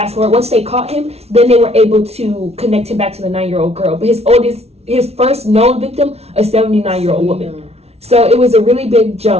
forward, once they caught him, then they were able to connect him back to the 9-year-old girl. But his first known victim, a 79-year-old woman. So it was a really big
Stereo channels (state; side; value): late; left; 0.31 ms